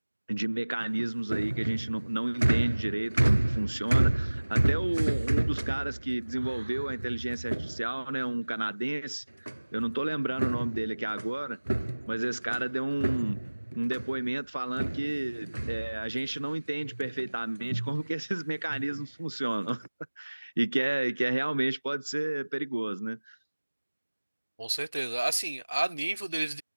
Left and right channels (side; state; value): both; inverted; correlation -1.00